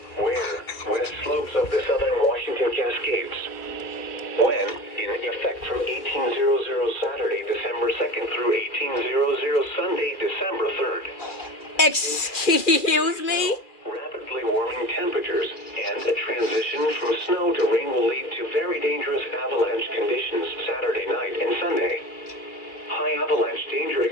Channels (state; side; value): late; right; 2.3 ms